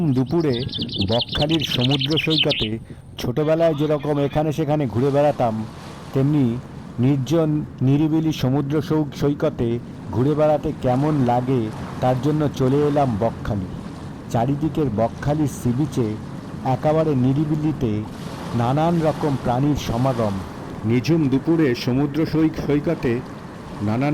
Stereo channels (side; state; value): both; identical; correlation 1.00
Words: দুপুরে বকখালির সমুদ্র সৈকতে ছোটবেলায় যেরকম এখানে সেখানে ঘুরে বেড়াতাম, তেমনি নির্জন নিরিবিলি সমুদ্র সৈকতে ঘুরে বেড়াতে কেমন লাগে তার জন্য চলে এলাম বকখালি। চারিদিকের বকখালির সি বিচে একেবারে নিরিবিলিতে নানান রকম প্রাণীর সমাগম। নিঝুম দুপুরে সমুদ্র সৈকতে নানান